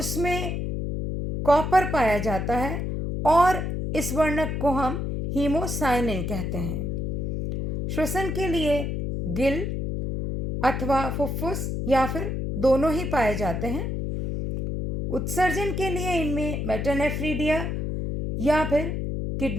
कॉपर पाया जाता है और इस वर्णक को हम हीमोसाइनिन कहते हैं। श्वसन के लिए गिल अथवा फुफ्फुस या फिर दोनों ही पाए जाते हैं। उत्सर्जन के लिए इनमें मेटानेफ्रीडिया या फिर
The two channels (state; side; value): noise; left; hum, 2 dB below the sound